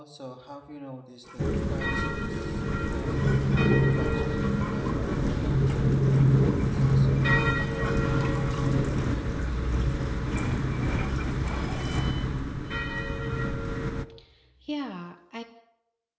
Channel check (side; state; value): both; identical; correlation 1.00